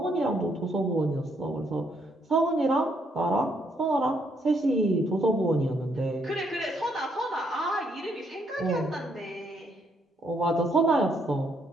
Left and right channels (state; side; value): normal; both; correlation 0.72